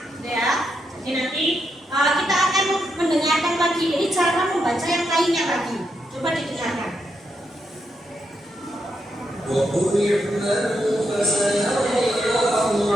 Ya, jadi nanti kita akan mendengarkan lagi ini cara membaca yang lainnya lagi. Coba didengarkan. وقل اعملوا فسيرى الله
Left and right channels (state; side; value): normal; both; correlation 0.82